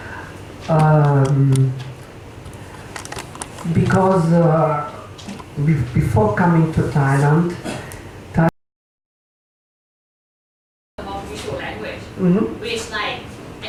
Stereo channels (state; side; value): identical; both; correlation 1.00